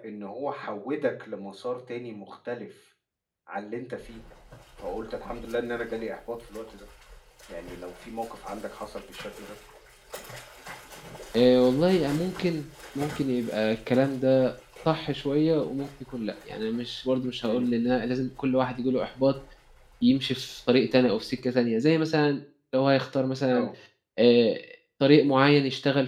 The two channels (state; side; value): identical; both; correlation 1.00